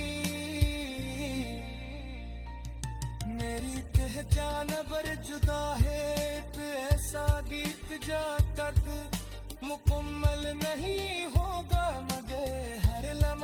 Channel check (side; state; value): both; identical; correlation 1.00